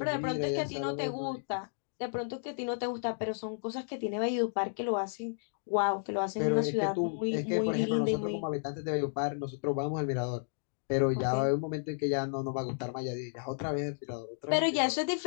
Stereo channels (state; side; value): silent; right; digital silence